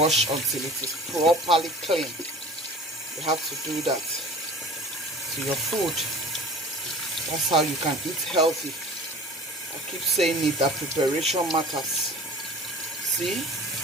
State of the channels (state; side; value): normal; both; correlation 0.42